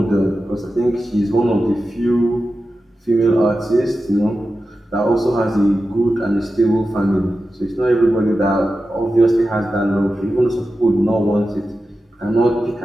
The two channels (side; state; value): both; normal; correlation 0.92